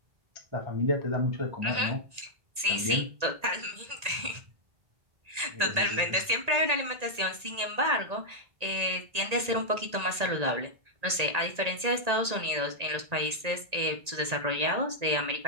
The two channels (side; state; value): left; late; 1.8 ms